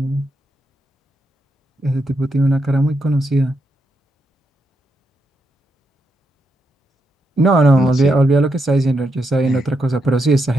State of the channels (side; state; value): both; normal; correlation 0.82